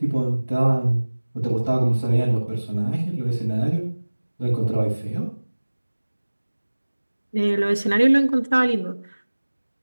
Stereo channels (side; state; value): both; inverted; correlation -1.00